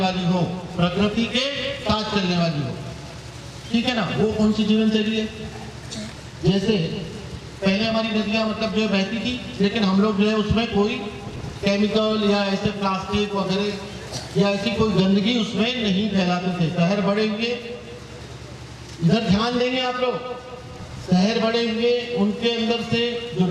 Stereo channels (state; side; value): identical; both; correlation 1.00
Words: हो, प्रकृति के साथ चलने वाली हो, ठीक है ना। वो कौन सी जीवन शैली है? जैसे पहले हमारी नदियाँ मतलब जो बहती थी, लेकिन हम लोग जो है उसमें कोई केमिकल या ऐसे प्लास्टिक वगैरह या ऐसी कोई गंदगी उसमें नहीं फैलाते थे। शहर बड़े हुए, इधर ध्यान देंगे आप लोग, शहर बड़े हुए, उनके अंदर से जो